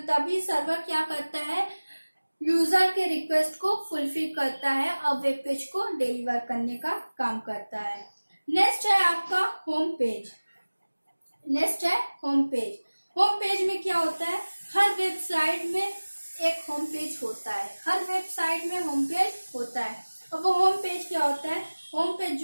तभी सर्वर क्या करता है, यूजर के रिक्वेस्ट को फुलफिल करता है और वेब पेज को डिलीवर करने का काम करता है। नेक्स्ट है आपका होम पेज। नेक्स्ट है होम पेज। होम पेज में क्या होता है, हर वेबसाइट में एक होम पेज होता है, हर वेबसाइट में होम पेज होता है। और वो होम पेज क्या होता है, होम पेज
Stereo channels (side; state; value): both; inverted; correlation -1.00